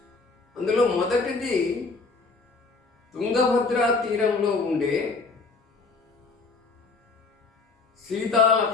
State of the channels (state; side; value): quieter; right; 4.0 dB